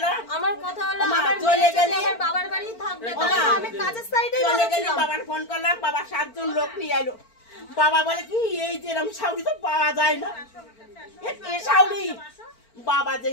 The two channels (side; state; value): right; late; 4.4 ms